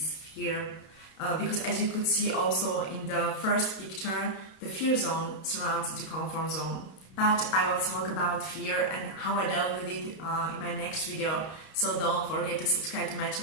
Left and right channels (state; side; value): late; right; 32 ms